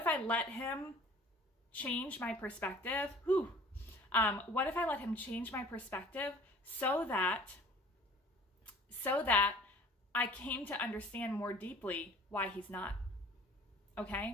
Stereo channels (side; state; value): both; normal; correlation 0.48